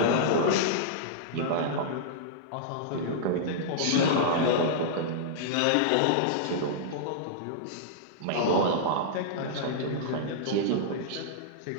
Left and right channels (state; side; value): different; both; correlation -0.02